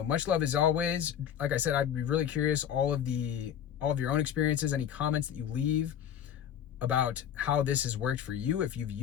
love as always. Like I said, I'd be really curious, all of your own experiences, any comments that you leave about how this has worked for you, if you've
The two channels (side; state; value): right; quieter; 9.4 dB